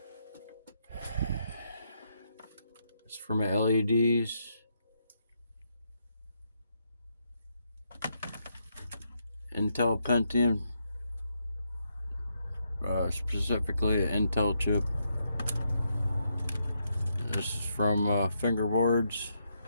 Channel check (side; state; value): both; inverted; correlation -0.79